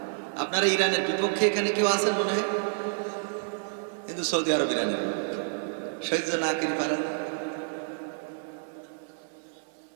আপনারা ইরানের বিপক্ষে এখানে কেউ আছেন মনে হয়? কিন্তু সৌদি আরব ইরানের বিপক্ষে সহ্য না করি পারা না।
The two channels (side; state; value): left; silent; digital silence